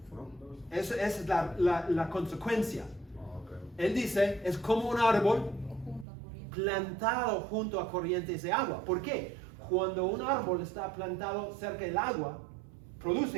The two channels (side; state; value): left; drops out; at 6.1 s